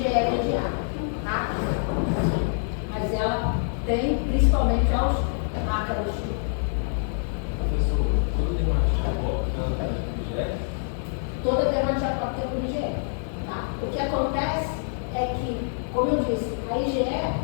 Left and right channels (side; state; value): right; silent; 61 dB below the other